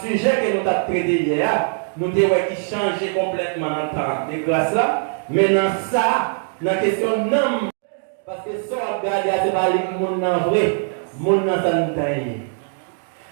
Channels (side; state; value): left; silent; digital silence